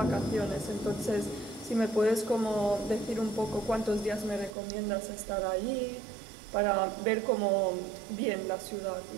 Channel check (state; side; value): drops out; left; at 4.5 s